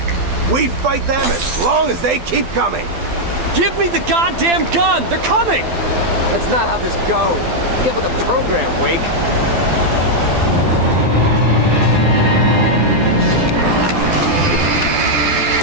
We fight them as long as they keep coming. Give me the goddamn gun! They're coming! That's not how this goes. Get with the program, Wake.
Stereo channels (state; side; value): late; left; 12 ms